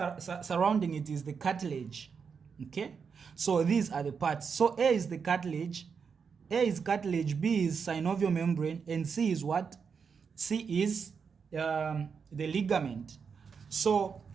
surrounding it is the cartilage. Okay, so these are the parts. So A is the cartilage, A is cartilage, B is synovial membrane, and C is what? C is the ligament. So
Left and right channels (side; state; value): left; quieter; 6.0 dB